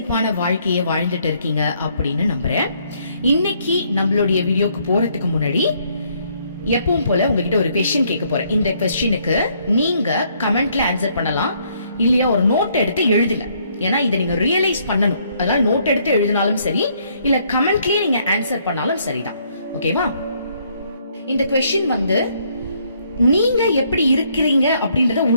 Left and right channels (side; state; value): both; inverted; correlation -0.68